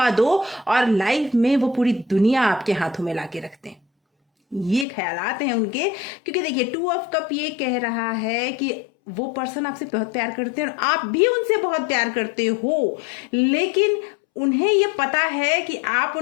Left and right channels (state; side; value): drops out; right; at 4.9 s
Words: दो और लाइफ में वो पूरी दुनिया आपके हाथों में लाके रख दें। ये ख्यालात हैं उनके, क्योंकि देखिए 2 ऑफ कप ये कह रहा है कि वो पर्सन आपसे बहुत प्यार करते हैं और आप भी उनसे बहुत प्यार करते हो, लेकिन उन्हें ये पता है कि आप